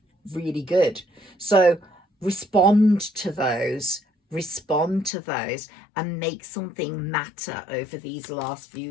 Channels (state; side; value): drops out; right; at 5.1 s